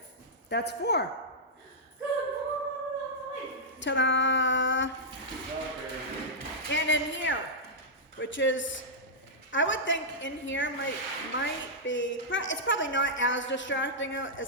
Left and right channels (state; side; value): normal; both; correlation -0.09